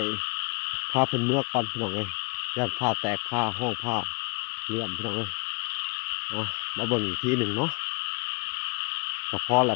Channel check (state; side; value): quieter; right; 28.6 dB